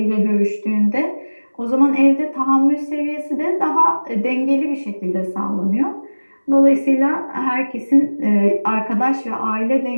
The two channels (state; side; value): inverted; both; correlation -1.00